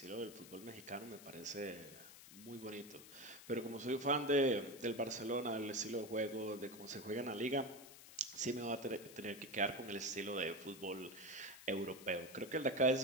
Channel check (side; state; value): left; noise; hiss, 16 dB below the sound